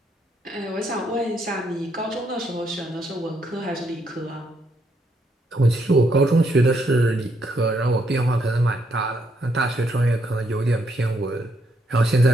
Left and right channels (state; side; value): normal; both; correlation 0.75